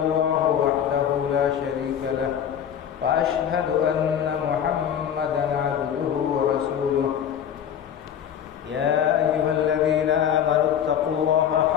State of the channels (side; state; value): right; quieter; 9.0 dB